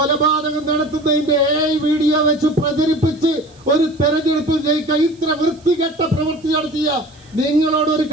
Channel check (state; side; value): noise; right; hiss, 29 dB below the sound